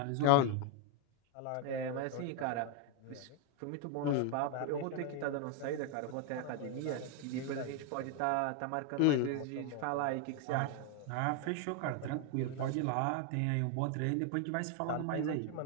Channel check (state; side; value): different; both; correlation 0.01